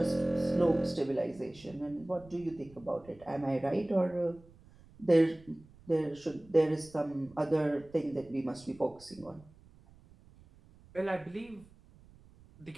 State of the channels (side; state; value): right; noise; rumble, 24 dB below the sound